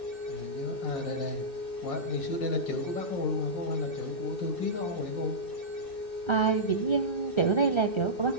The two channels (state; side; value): late; right; 2.6 ms